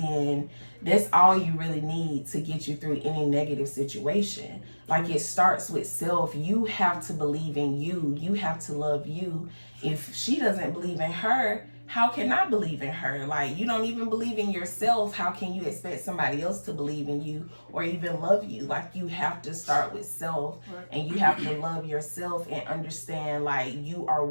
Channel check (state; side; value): inverted; both; correlation -1.00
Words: that's all you really need to get you through any negative situation. Like, it starts with self. You have to believe in you. You have to love you. If she doesn't believe in her, how can I believe in her? Like, you don't even believe in yourself. How can you expect somebody else to believe in you or even love you? Like, you have to start with self, and you have to love yourself and understand, like, you are